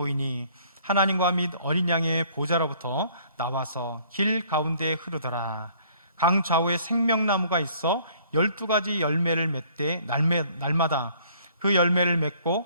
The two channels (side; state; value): both; inverted; correlation -0.58